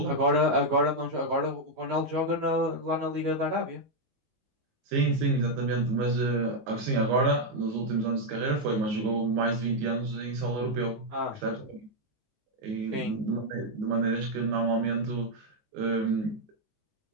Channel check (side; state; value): left; late; 19 ms